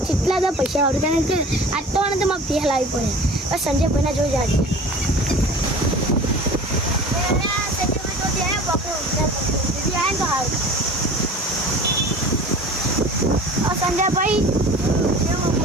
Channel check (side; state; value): both; normal; correlation 0.41